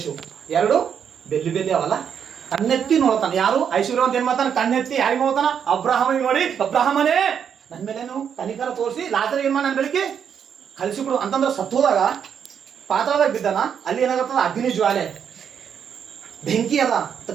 ಎರಡು ಬೆಲ್ಲಿ ಬೆಲ್ಲಿ ಅವಲ್ಲ. ಕಣ್ಣೆತ್ತಿ ನೋಡ್ತಾನೆ ಯಾರು? ಐಶ್ವರ್ಯವಂತ ಏನ್ ಮಾಡ್ತಾನೆ? ಕಣ್ಣೆತ್ತಿ ಯಾರಿಗೆ ನೋಡ್ತಾನ? ಅಬ್ರಾಹಮಿಗೆ ನೋಡಿ, ಅಬ್ರಾಹಮನೇ ನನ್ನ ಮೇಲೇನು ಕನಿಕರ ತೋರಿಸಿ ಲಾಜರ್ ಏನ್ ಮಾಡಿ ನನ್ನ ಬೆಳಿಗ್ಗೆ ಕಳಿಸಿಕೊಡು ಅಂತಂದ್ರೆ ಸತ್ತೋದಾಗ ಪಾತಾಳದಾಗ ಬಿದ್ದಾನ. ಅಲ್ಲಿ ಏನಾಗತ್ತದ? ಅಗ್ನಿ ಜ್ವಾಲೆ, ಬೆಂಕಿ ಅದ,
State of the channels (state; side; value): quieter; left; 7.8 dB